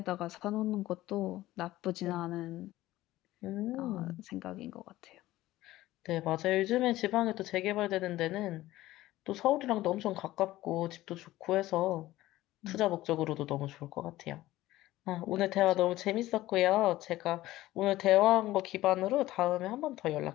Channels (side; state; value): right; quieter; 16.2 dB